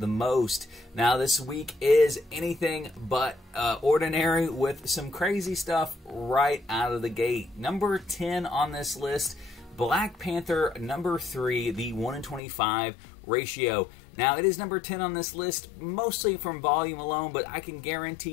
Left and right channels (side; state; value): right; drops out; at 12.4 s